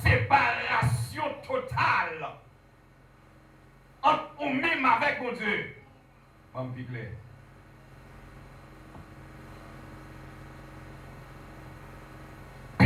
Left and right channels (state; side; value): identical; both; correlation 1.00